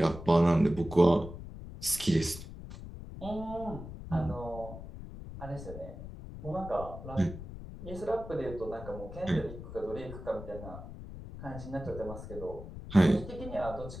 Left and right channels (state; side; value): noise; left; rumble, 11 dB below the sound